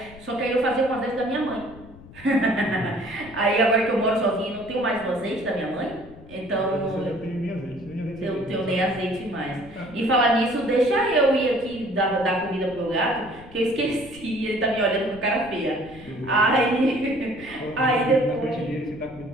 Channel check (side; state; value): left; noise; rumble, 19 dB below the sound